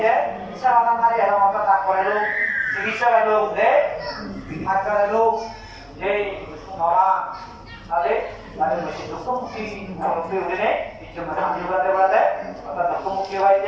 দেয় ইচ্ছা মাথা মারি এবং হয়তো তা করে লোক চিকিৎসা লোক দেয় আজকাল লোক যে মামা তাদের তাদের বেশি দুঃখমুখী উঠে কিছু শান্তি বলাতে বলাতে অর্থাৎ দুঃখমুখী হয়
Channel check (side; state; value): both; identical; correlation 1.00